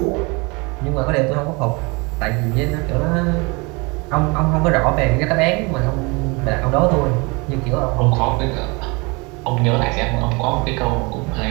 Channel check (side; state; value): left; quieter; 28.2 dB